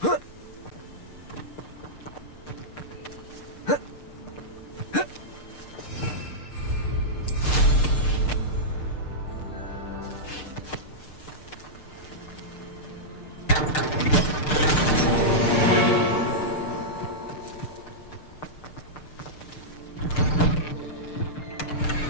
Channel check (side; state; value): right; late; 6.6 ms